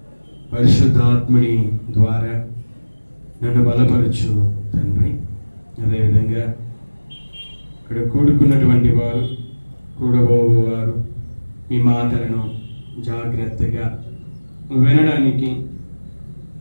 పరిశుద్ధాత్ముడి ద్వారా నన్ను బలపరచు తండ్రి. అదేవిధంగా ఇక్కడ కూడుకున్నటువంటి వారు, కూడబోవారు మీ మాటలను జాగ్రత్తగా వినడానికి,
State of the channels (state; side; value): inverted; both; correlation -1.00